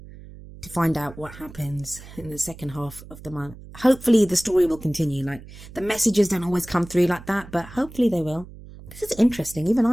to find out what happens in the second half of the month. Hopefully the story will continue. Like the messages don't always come through like that, but hopefully they will. This is interesting. Even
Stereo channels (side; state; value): right; noise; hum, 17 dB below the sound